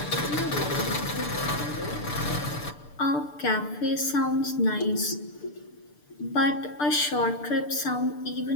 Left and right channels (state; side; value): late; right; 6.8 ms